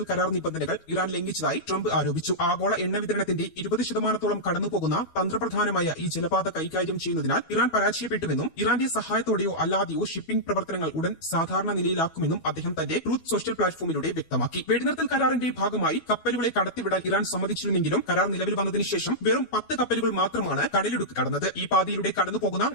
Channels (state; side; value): late; right; 12 ms